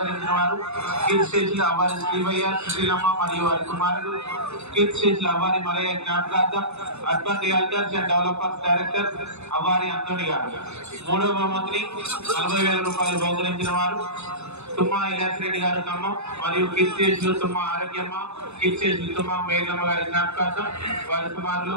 వారు కీర్తిశేషులు అవ్వారి శ్రీవయ్య సుశీలమ్మ మరియు వారి కుమారుడు కీర్తిశేషులు అవ్వారి మలయ్య జ్ఞాపకార్థం urban realtors and developers director Avvari Anthony గారు. మూడవ బహుమతిని 40,000 రూపాయలు బహుకరించిన వారు తుమ్మా ఇలాస్ రెడ్డి గారు ఖమ్మం మరియు కీర్తిశేషులు తుమ్మా ఆరోగ్యమ్మ కీర్తిశేషులు తుమ్మా మేఘమ్మ గారి జ్ఞాపకార్థం వారి కుమారులు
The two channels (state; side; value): late; left; 0.81 ms